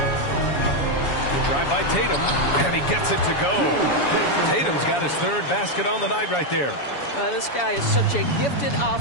Drive by Tatum, and he gets it to go. Tatum's got his third basket on the night right there. This guy is such a gifted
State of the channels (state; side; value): late; right; 7.1 ms